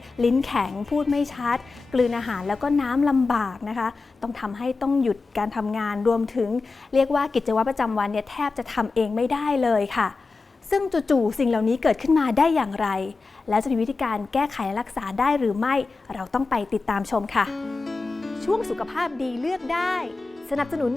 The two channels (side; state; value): right; quieter; 4.0 dB